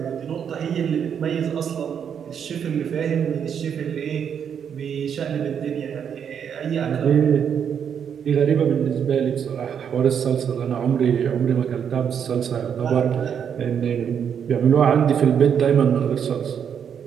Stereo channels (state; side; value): quieter; left; 7.9 dB